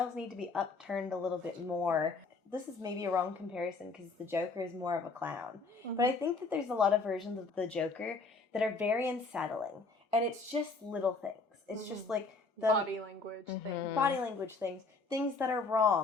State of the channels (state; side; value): quieter; right; 3.9 dB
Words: need to be upturned a little bit more. This is maybe a wrong comparison because the Joker is more of a clown. But I think that there's a lot of versions of the Joker that are very unsettling. And it's just little things. It's just like the body language things. body language things. Things that are